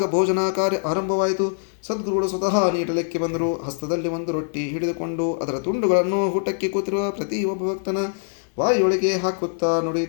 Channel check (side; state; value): right; silent; 63 dB below the other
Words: ಭೋಜನ ಕಾರ್ಯ ಆರಂಭವಾಯಿತು. ಸದ್ಗುರುಗಳು ಸ್ವತಃ ನೀಡಲಿಕ್ಕೆ ಬಂದರು. ಹಸ್ತದಲ್ಲಿ ಒಂದು ರೊಟ್ಟಿ ಹಿಡಿದುಕೊಂಡು ಅದರ ತುಂಡುಗಳನ್ನು ಊಟಕ್ಕೆ ಕೂತಿರುವ ಪ್ರತಿಯೊಬ್ಬ ಭಕ್ತನ ಬಾಯಿಯೊಳಗೆ ಹಾಕುತ್ತಾ